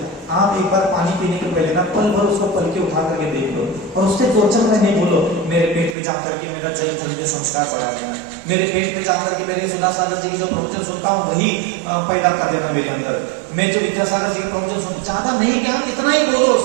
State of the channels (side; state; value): left; drops out; at 6.0 s